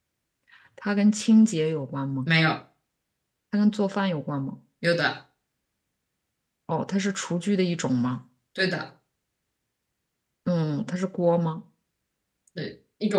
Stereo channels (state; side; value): identical; both; correlation 1.00